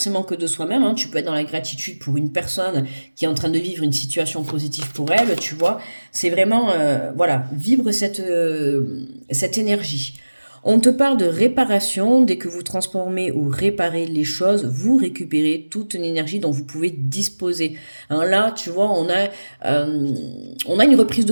que de soi-même, hein. Tu peux être dans la gratitude pour une personne qui est en train de vivre une situation positive pour elle, tu vois. C'est vraiment, voilà, vibre cette énergie. On te parle de réparation. Dès que vous transformez ou réparez les choses, vous récupérez toute une énergie dont vous pouvez disposer. Hein, là, tu vois, on a une reprise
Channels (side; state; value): both; inverted; correlation -1.00